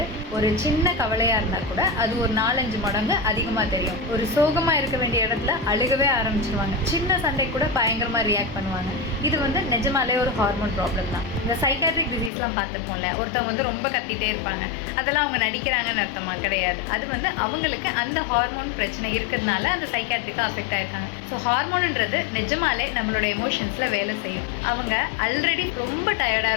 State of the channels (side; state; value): right; drops out; at 12.3 s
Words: ஒரு சின்ன கவலையாக இருந்தால் கூட அது ஒரு 4-5 மடங்கு அதிகமாக தெரியும். ஒரு சோகமாக இருக்க வேண்டிய இடத்துல அழுகவே ஆரம்பிச்சிருவாங்க. சின்ன சண்டை கூட பயங்கரமாக ரியாக்ட் பண்ணுவாங்க. இது நிஜமாலே ஒரு ஹார்மோன் ப்ராப்ளம் தான். இந்த சைக்காட்ரிக் டிசீஸ்லாம் பார்த்துருப்போம்ல, ஒருத்தவங்க ரொம்ப கத்திட்டே இருப்பாங்க, அதெல்லாம் அவங்க நடிக்கிறாங்கன்னு அர்த்தமாக கிடையாது. அது அவங்களுக்கு அந்த ஹார்மோன் பிரச்சனை இருக்கிறதுனால அந்த சைக்காட்ரிக்காக அஃபெக்ட் ஆயிருக்காங்க. ஸோ ஹார்மோன்ன்றது நிஜமாலே நம்மளோட எமோஷன்ஸில் வேலை செய்யும். அவங்க ஆல்ரெடி ரொம்ப டயர்டாக